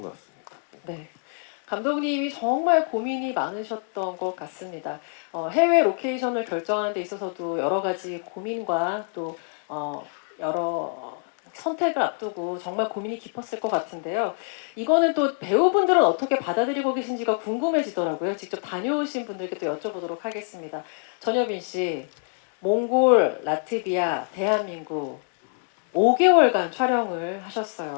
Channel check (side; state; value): right; silent; 61 dB below the other